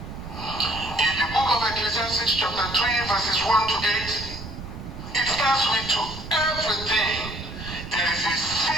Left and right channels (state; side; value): noise; right; rumble, 10 dB below the sound